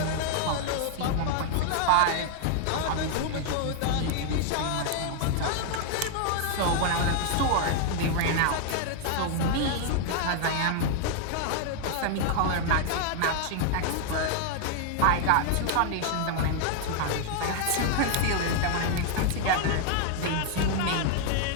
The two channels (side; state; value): both; different; correlation 0.00